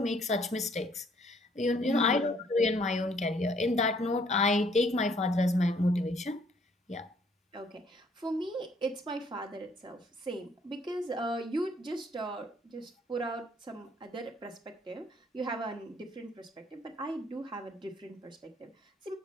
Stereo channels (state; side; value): normal; both; correlation 0.64